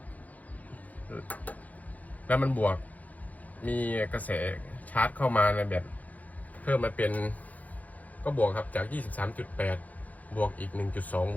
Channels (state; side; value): late; right; 0.077 ms